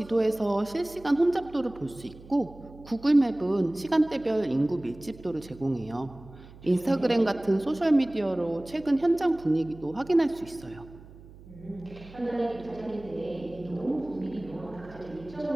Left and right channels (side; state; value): right; noise; hum, 20 dB below the sound